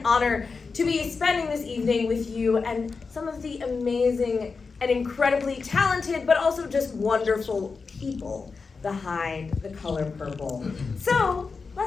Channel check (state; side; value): quieter; right; 4.7 dB